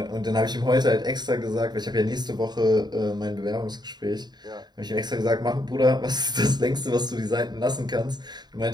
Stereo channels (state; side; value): late; left; 0.20 ms